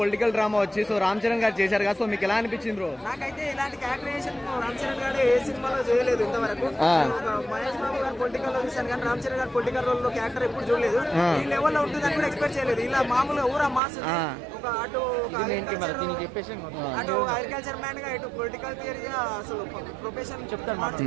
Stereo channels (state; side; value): drops out; left; at 13.8 s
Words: డ్రామా వచ్చి, సో రామ్ చరణ్ గారు చేశారు కదా, సో మీకు ఎలా అనిపించింది బ్రో? నాకైతే ఇలాంటి క్యారెక్టరైజేషన్ రామ్ చరణ్ గారు ఏ సినిమాలో చేయలేదు ఇంతవరకు. మహేష్ బాబు గారు పొలిటికల్ లో చూశాను కానీ రామ్ చరణ్ గారు పొలిటికల్ రోల్ లో క్యారెక్టర్ ఎప్పుడు చూడలేదు. ఈ లెవెల్ లో ఉంటుందని కూడా ఎక్స్పెక్ట్ చేయలేదు. ఇలా మామూలుగా ఊరా మాస్ ఒక అటు అగ్రికల్చర్ మ్యాన్ గా, ఇటు పొలిటికల్ థియరీగా, అసలు ప్రొఫెషన్ చెప్తాను